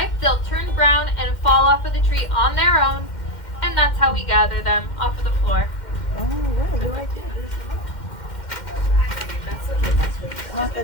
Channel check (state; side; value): late; right; 2.1 ms